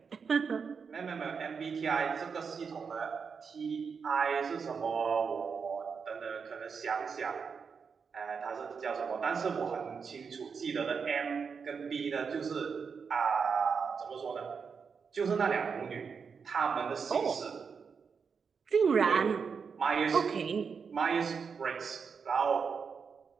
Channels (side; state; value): left; quieter; 5.9 dB